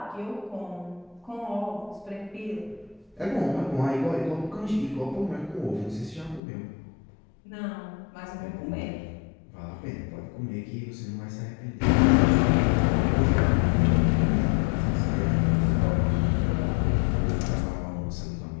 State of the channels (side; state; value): right; drops out; at 6.4 s